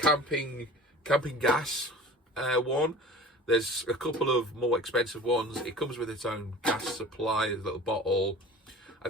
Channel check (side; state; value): both; normal; correlation 0.40